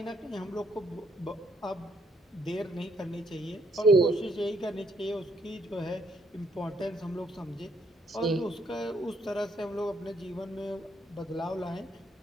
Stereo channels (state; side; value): normal; both; correlation 0.71